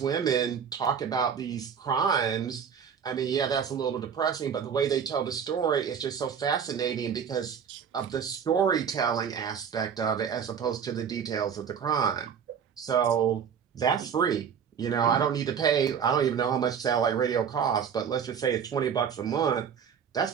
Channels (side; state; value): left; quieter; 7.4 dB